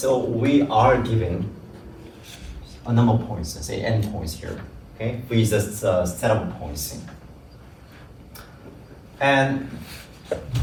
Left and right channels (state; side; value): identical; both; correlation 1.00